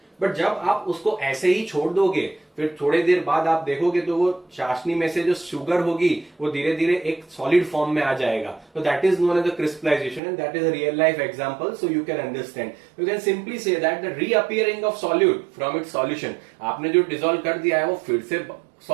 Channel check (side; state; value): left; drops out; at 10.2 s